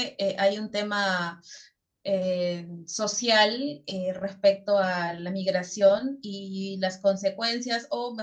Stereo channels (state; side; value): identical; both; correlation 1.00